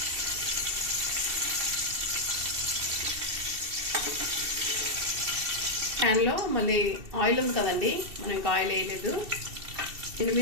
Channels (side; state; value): left; late; 2.7 ms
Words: ప్యాన్లో మళ్ళీ ఆయిల్ ఉంది కదండి, మనం ఇంకా ఆయిల్ వేయలేదు.